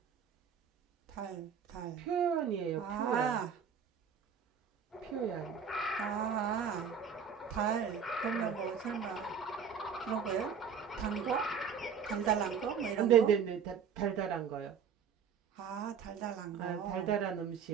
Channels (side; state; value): left; quieter; 6.9 dB